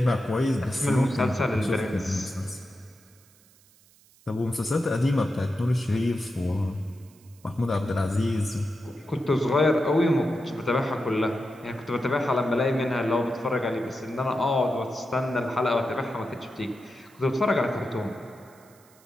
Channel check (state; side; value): noise; right; hiss, 29 dB below the sound